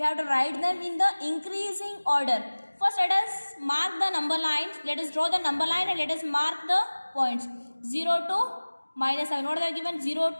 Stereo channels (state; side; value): inverted; both; correlation -1.00